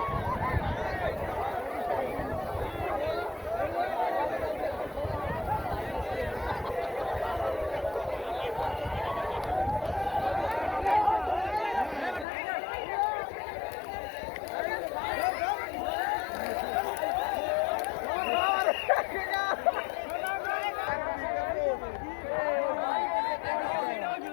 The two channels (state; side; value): drops out; right; at 12.2 s